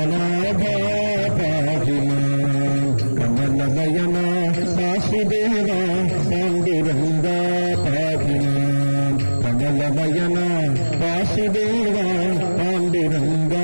പാഹിമാൻ കമലനയന വാസുദേവ പാണ്ഡുരംഗ പാഹിമാൻ കമലനയന വാസുദേവ പാണ്ഡുരംഗ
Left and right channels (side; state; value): both; inverted; correlation -1.00